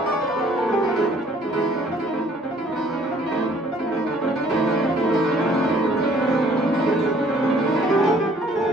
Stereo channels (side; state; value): both; normal; correlation 0.59